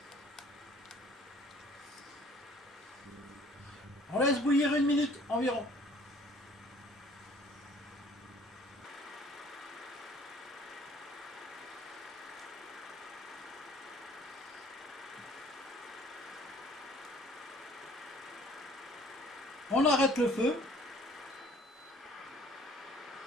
On laisse bouillir 1 minute environ. On arrête le feu.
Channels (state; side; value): normal; both; correlation 0.55